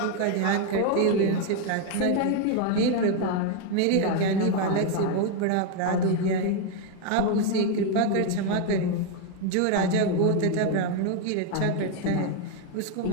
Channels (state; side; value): different; both; correlation 0.01